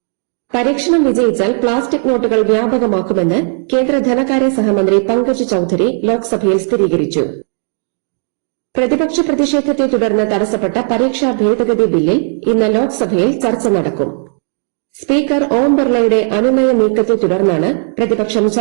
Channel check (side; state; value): left; silent; 55 dB below the other